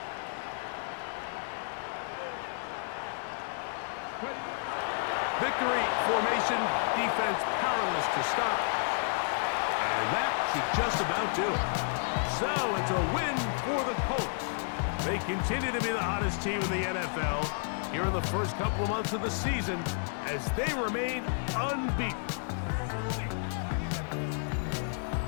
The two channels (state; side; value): silent; right; 57 dB below the other